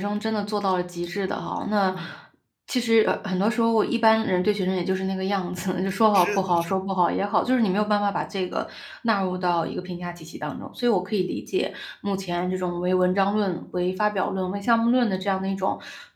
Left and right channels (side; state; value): both; identical; correlation 1.00